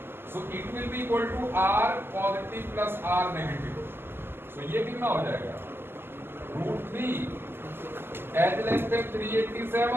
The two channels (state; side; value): late; left; 0.11 ms